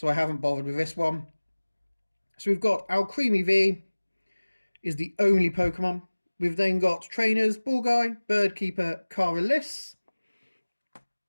I haven't bothered with this one. So we've got Alcremie V is the only Pokemon. We've then got trainers, Ball Guy, Bird Keeper, Caralis,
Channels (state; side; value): inverted; both; correlation -1.00